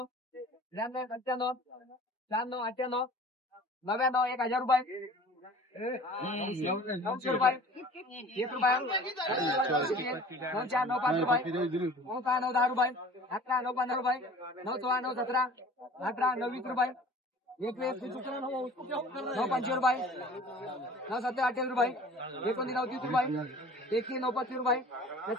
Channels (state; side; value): normal; both; correlation 0.45